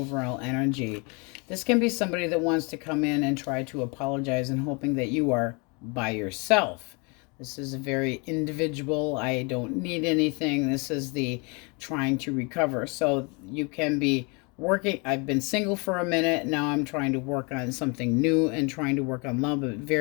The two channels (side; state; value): right; quieter; 31.3 dB